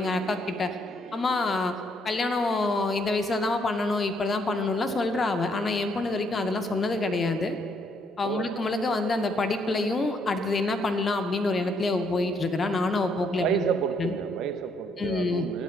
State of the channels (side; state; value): both; normal; correlation 0.71